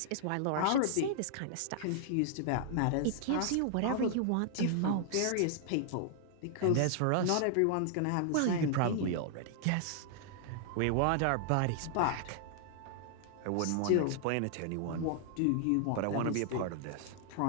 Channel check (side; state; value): both; different; correlation -0.01